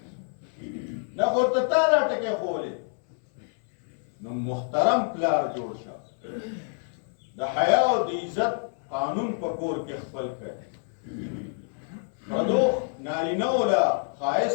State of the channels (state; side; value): silent; right; 60 dB below the other